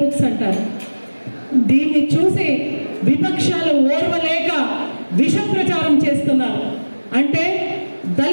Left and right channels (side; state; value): both; inverted; correlation -1.00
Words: బుక్స్ అంటారు. దీన్ని చూసి విపక్షాలు ఓర్వలేక విష ప్రచారం చేస్తున్నారు. అంటే